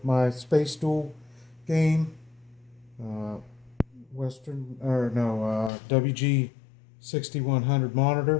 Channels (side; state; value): right; drops out; at 5.7 s